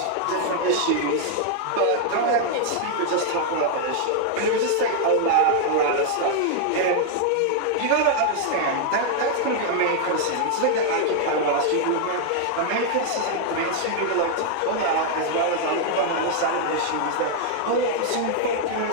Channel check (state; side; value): different; both; correlation 0.00